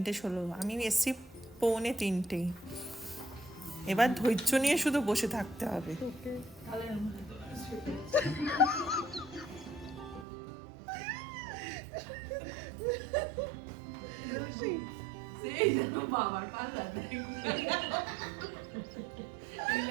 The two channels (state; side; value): drops out; left; at 10.2 s